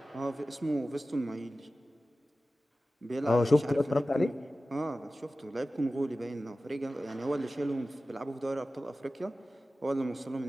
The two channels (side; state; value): both; normal; correlation 0.95